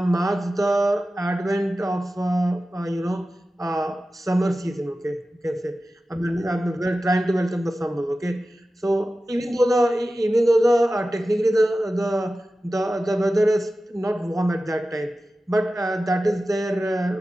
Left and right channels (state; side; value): normal; both; correlation 0.94